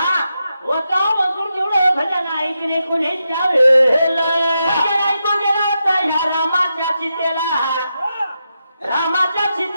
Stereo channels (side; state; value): both; inverted; correlation -0.86